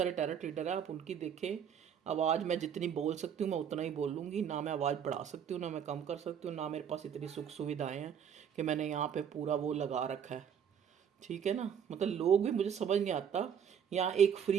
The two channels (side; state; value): left; quieter; 8.1 dB